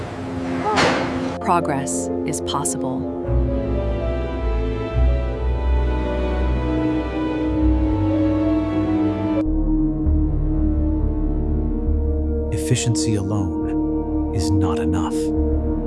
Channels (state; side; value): identical; both; correlation 1.00